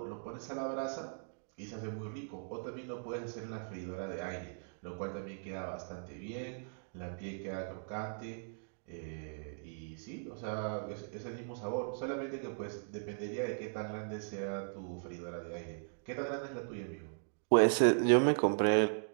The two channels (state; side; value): silent; left; digital silence